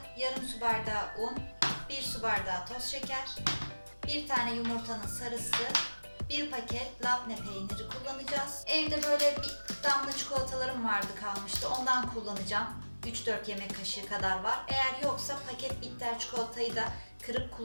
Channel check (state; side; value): inverted; both; correlation -1.00